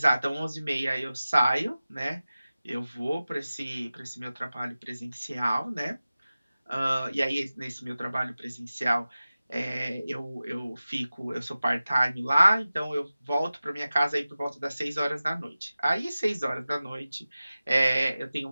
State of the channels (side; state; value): both; inverted; correlation -0.96